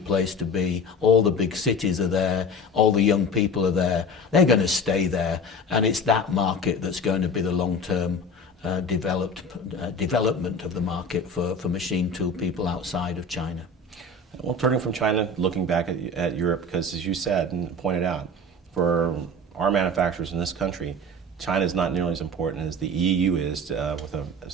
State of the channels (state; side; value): normal; both; correlation 0.34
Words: place to be. All the big cities are there. All the young people are there. They're going to stay there. And it's that market that's going to be the long-term development of the market for machine tool people outside of China. Well, turning from China, looking back at Europe, because as you said and pointed out, for our manufacturers in this country, China is not nearly as important as the EU is